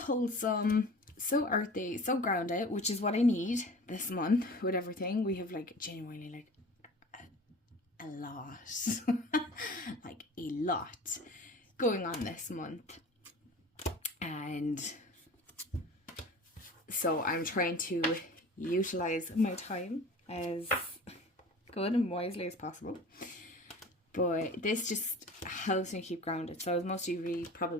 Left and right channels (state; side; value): normal; both; correlation 0.40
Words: so earthy, so grounded, which is what I need this month with everything. We have like genuinely like a lot like a lot going on this month, and so I'm trying to utilize my time as good and wisely as possible. But this just helps me keep grounded. So as most of you